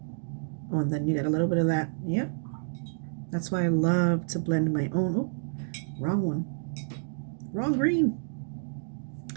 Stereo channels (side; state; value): left; silent; digital silence